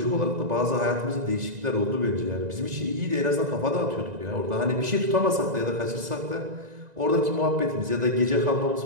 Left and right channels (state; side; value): late; left; 1.9 ms